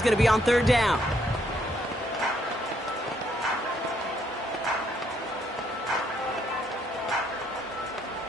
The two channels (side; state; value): both; normal; correlation 0.71